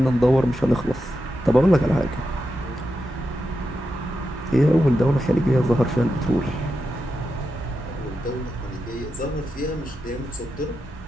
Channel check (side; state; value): both; normal; correlation 0.88